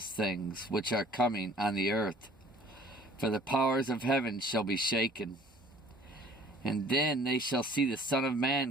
things which are coming on the earth. For the powers of heaven shall be shaken. And then they shall see the Son of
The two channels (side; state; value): both; normal; correlation 0.53